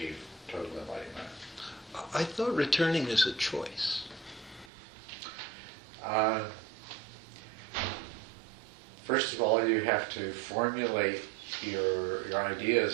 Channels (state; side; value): drops out; left; at 4.7 s